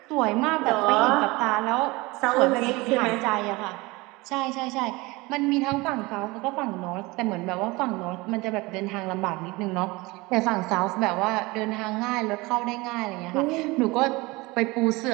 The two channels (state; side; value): quieter; left; 23.0 dB